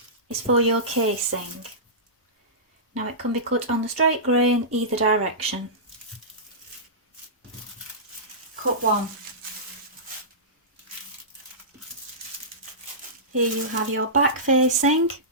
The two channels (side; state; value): both; normal; correlation -0.19